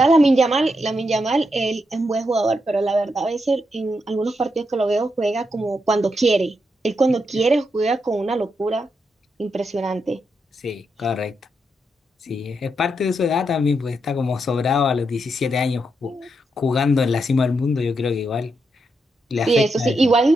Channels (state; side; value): normal; both; correlation 0.82